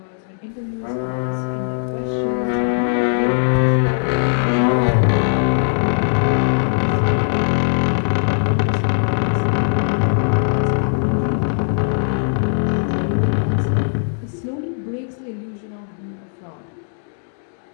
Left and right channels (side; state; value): right; silent; digital silence